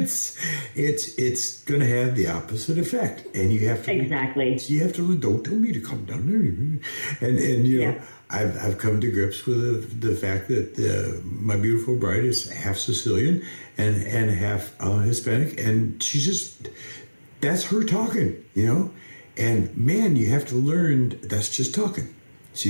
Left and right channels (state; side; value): inverted; both; correlation -1.00